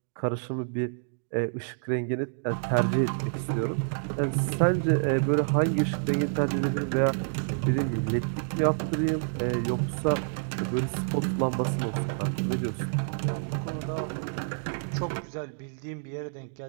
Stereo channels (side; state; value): left; silent; digital silence